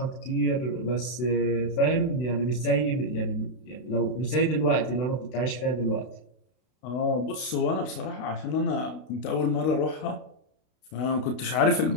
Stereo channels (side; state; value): right; late; 32 ms